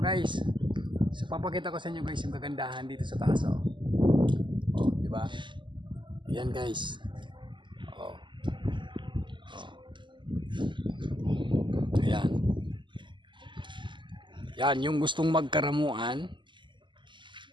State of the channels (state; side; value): late; left; 0.23 ms